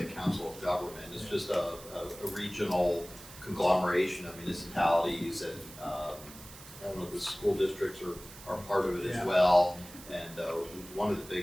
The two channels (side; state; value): right; noise; hiss, 17 dB below the sound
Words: Council of Government. It's just a regional conglomeration of municipalities, and I don't know, the school districts are part of it as well. And one of the